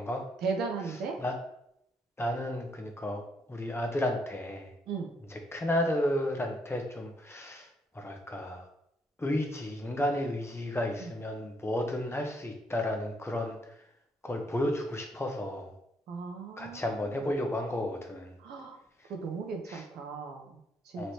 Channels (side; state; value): both; normal; correlation 0.72